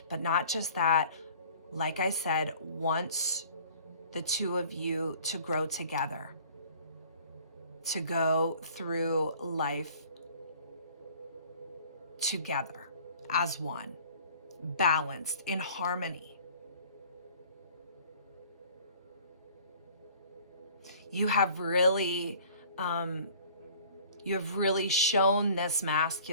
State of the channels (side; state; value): both; inverted; correlation -0.51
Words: but not just that. Like I said, wants the two of you to grow together, to go through life together as one, balanced, in harmony. You have really shown this